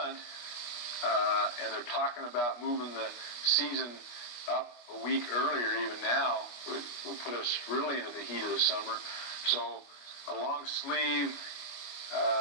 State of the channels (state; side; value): late; right; 25 ms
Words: and they're talking about moving the season up a week earlier, even now, will put us really into the heat of the summer. So a long sleeve